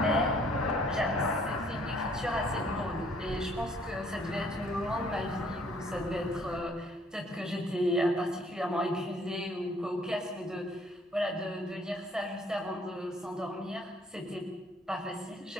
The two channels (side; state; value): both; normal; correlation 0.61